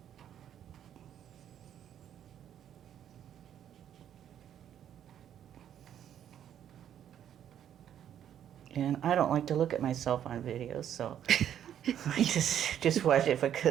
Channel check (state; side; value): quieter; left; 10.0 dB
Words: And I don't like to look at myself on videos, so I just watch it